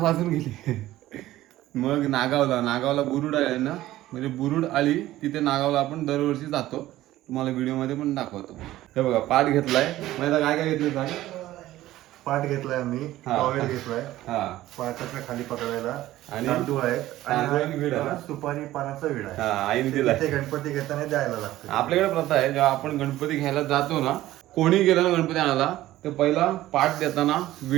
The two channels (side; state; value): left; quieter; 15.2 dB